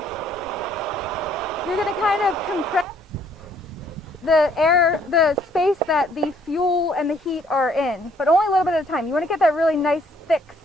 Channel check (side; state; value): both; normal; correlation 0.64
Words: You're going to kind of compress the space that the fuel and the heat are in, but only a little bit at a time. You want to get that really nice thick